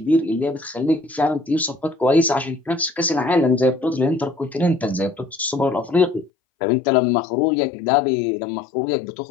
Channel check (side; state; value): right; drops out; at 6.3 s